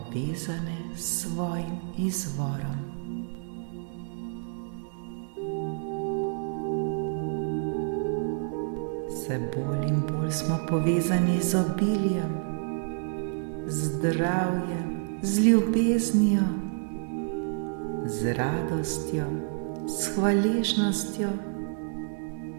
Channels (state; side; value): silent; left; 59 dB below the other